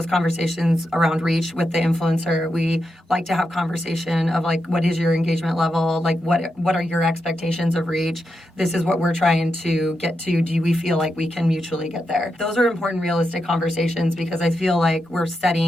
conversations around reach with the influencer. We like to have conversation of like, what is your engagement level? Like, what are your expectations of reach? This is what we're trying to get to. Do we feel like we can mutually get there? Those are important, realistic conversations because I feel like we're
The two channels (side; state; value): both; normal; correlation 0.86